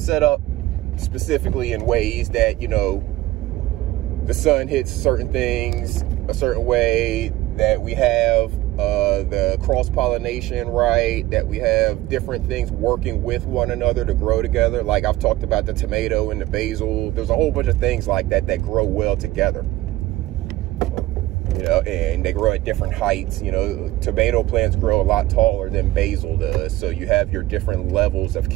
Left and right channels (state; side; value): quieter; left; 16.8 dB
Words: up specifically in ways that, you know, the sun hits certain things a certain way, that we have the cross-pollination right, that we have different things working with one another to grow together. Like I've talked about the tomato and the basil. There's a whole bunch of things like that that grow well together. You know, and they grow at different heights. You know, tomato plants grow a lot taller than basil does. So you have your different levels of